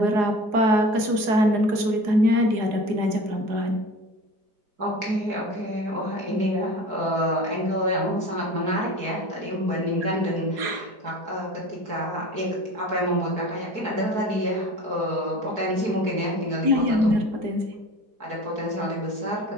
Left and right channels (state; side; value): late; left; 4.8 ms